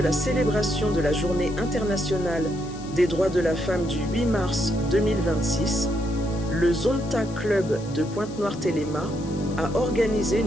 célébration de la Journée internationale des droits de la femme du 8 mars 2026, le Zonta Club de Pointe-Noire-Téléma a organisé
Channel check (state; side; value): noise; left; hiss, 20 dB below the sound